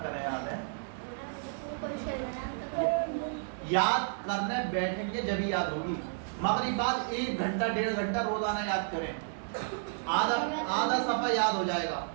याद है, याद करने बैठेंगे जब ही याद होगी। मगरिब बाद 1 घंटा 1.5 घंटा रोजाना याद करें, आधा सफा याद हो जाएगा।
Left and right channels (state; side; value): silent; left; digital silence